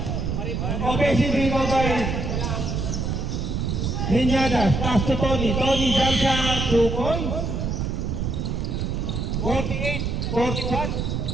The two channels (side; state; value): right; noise; rumble, 1 dB below the sound